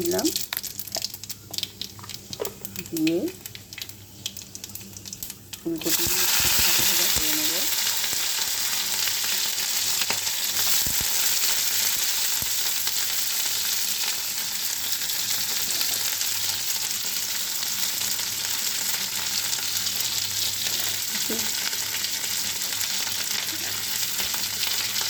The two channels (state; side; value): identical; both; correlation 1.00